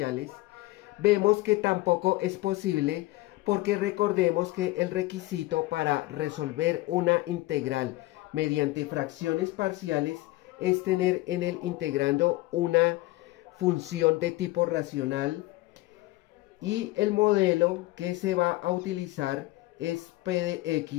vemos que tampoco es posible, porque recordemos que el requisito para resolver una integral mediante fracciones parciales es tener en el integrando una función de tipo racional, y el modelo que se va a utilizar es P de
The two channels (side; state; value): right; quieter; 19.1 dB